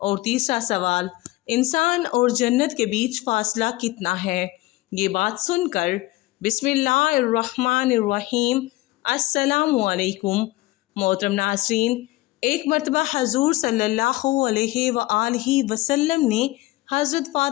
اور تیسرا سوال انسان اور جنت کے بیچ فاصلہ کتنا ہے۔ یہ بات سن کر بسم اللہ الرحمن الرحیم السلام علیکم۔ محترم ناظرین، ایک مرتبہ حضور صلی اللہ علیہ وآلہ وسلم نے حضرت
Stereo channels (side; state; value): right; quieter; 19.4 dB